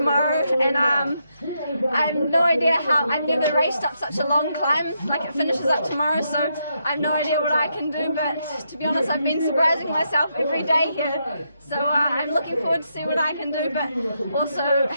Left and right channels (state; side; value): inverted; both; correlation -0.80